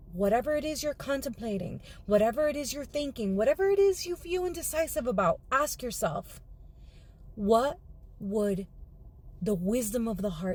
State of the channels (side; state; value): both; identical; correlation 1.00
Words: whatever it is you're contemplating, whatever it is you're thinking, whatever it is you feel indecisive about, ask yourself, what would the wisdom of the